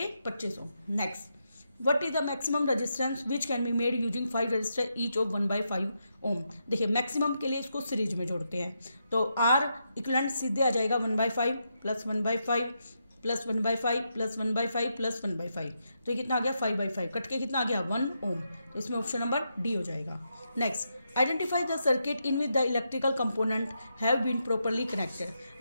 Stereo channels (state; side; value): inverted; both; correlation -0.83